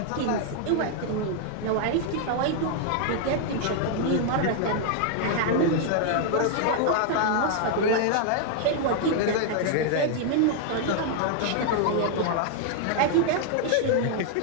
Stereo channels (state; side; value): different; both; correlation 0.00